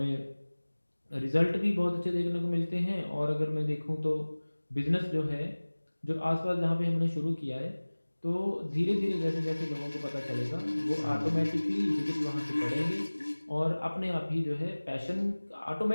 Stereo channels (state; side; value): inverted; both; correlation -1.00